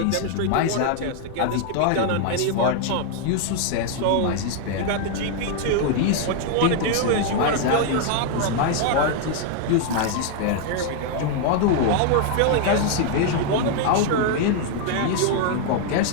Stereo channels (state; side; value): different; both; correlation 0.00